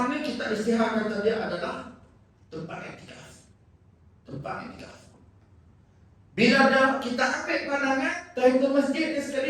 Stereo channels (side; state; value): both; identical; correlation 1.00